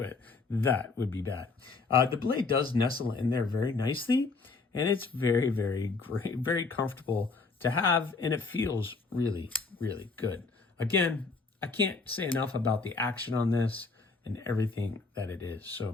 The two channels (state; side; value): quieter; right; 4.1 dB